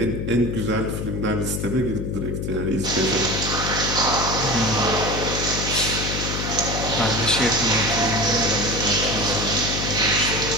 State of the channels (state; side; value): noise; left; hum, 3 dB below the sound